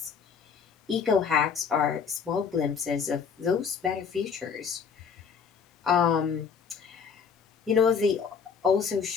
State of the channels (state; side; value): quieter; right; 6.3 dB